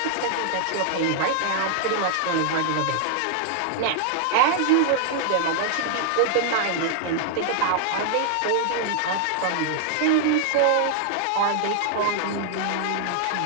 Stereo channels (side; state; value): both; different; correlation -0.01